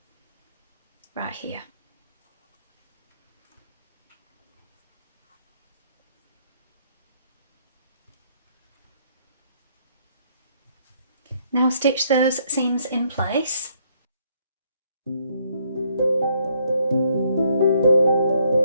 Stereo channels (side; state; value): both; inverted; correlation -0.69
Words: right here. Now stitch those seams in place.